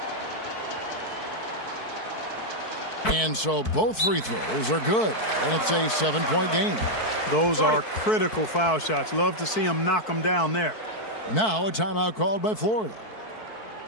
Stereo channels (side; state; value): right; late; 4.6 ms